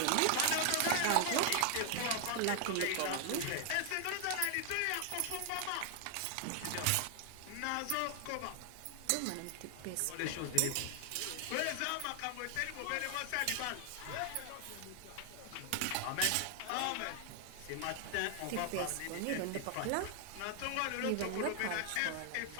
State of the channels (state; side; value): different; both; correlation 0.00